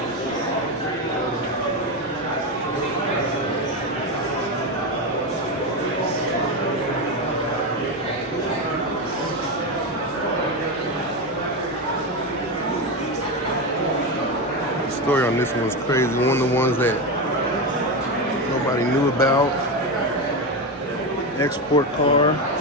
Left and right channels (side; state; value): both; normal; correlation 0.15